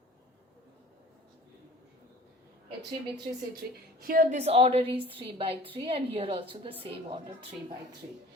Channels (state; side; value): normal; both; correlation 0.46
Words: A3 B3 C3. Here this order is 3 by 3, and here also the same order 3 by 3.